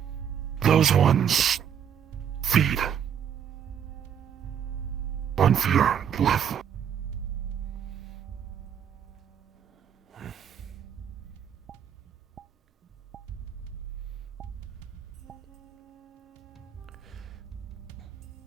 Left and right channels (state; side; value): quieter; left; 8.5 dB